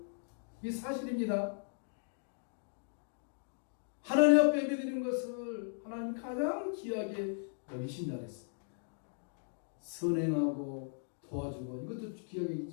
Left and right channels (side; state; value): right; silent; digital silence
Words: 이게 사실입니다. 하나님 앞에 예배드리는 것을 하나님 가장 귀하게 여기신다 그랬어요. 선행하고 도와주고 이것도 귀하게